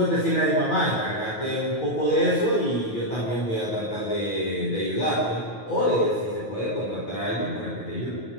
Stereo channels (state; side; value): late; right; 9.3 ms